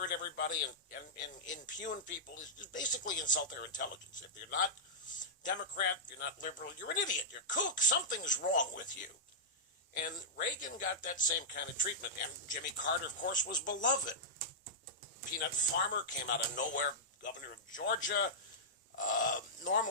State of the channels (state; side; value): normal; both; correlation -0.12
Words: everybody and impugn people is just basically insult their intelligence. If you're not Democrat, if you're not liberal, you're an idiot. You're kook. Something's wrong with you. And Reagan got that same kind of treatment. And Jimmy Carter, of course, was beloved. Peanut Farmer came out of nowhere, governor of Georgia.